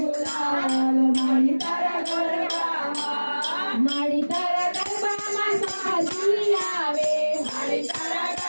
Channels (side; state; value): both; inverted; correlation -1.00